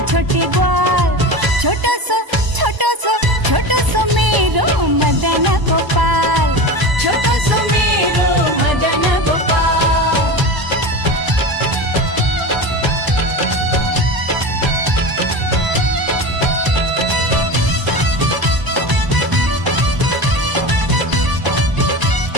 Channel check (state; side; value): late; left; 1.0 ms